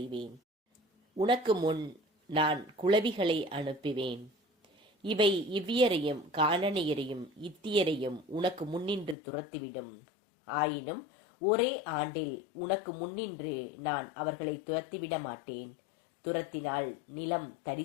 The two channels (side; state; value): right; drops out; at 9.2 s